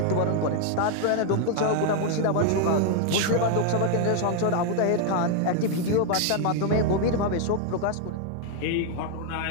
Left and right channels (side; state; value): both; different; correlation 0.00